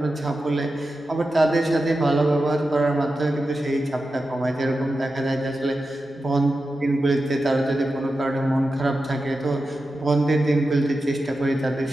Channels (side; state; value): both; normal; correlation 0.91